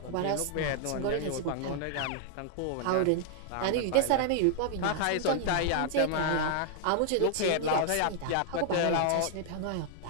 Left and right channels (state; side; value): different; both; correlation 0.00